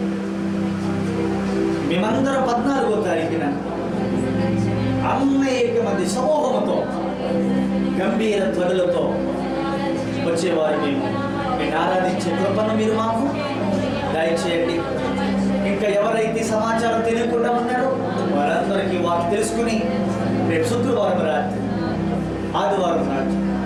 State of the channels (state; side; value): identical; both; correlation 1.00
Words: మేమందరం 14వ తారీఖున అనేక మంది సమూహంతో గంభీర ధ్వనులతో వచ్చేవారు. మేము నేను ఆరాధించే కృపను మీరు మాకు దయచేయండి. ఇంకా ఎవరైతే సమాచారం తెలియకుండా ఉన్నారో వారందరికీ వారు తెలుసుకుని రేపు శుక్రవారం రాత్రి ఆదివారం రాత్రి